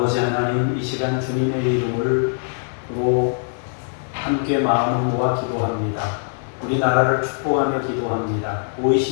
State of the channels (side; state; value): right; silent; digital silence